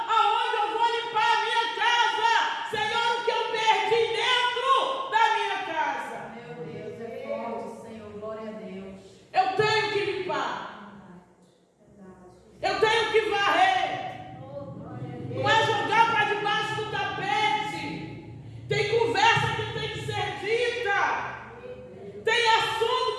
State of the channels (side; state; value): both; identical; correlation 1.00